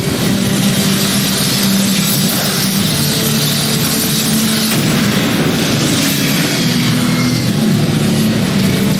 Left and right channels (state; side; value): identical; both; correlation 1.00